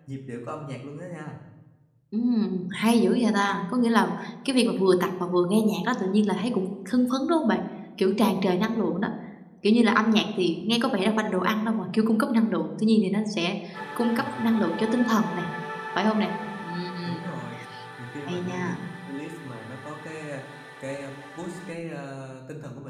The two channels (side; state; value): both; identical; correlation 1.00